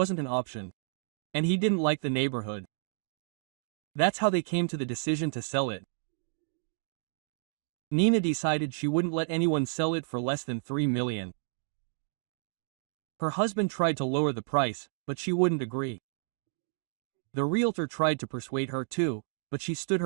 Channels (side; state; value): left; silent; digital silence